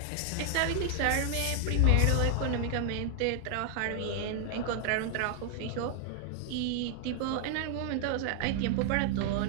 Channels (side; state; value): both; different; correlation 0.00